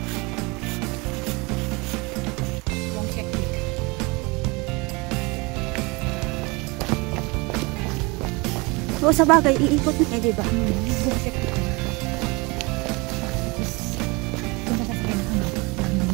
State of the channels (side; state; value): left; quieter; 26.7 dB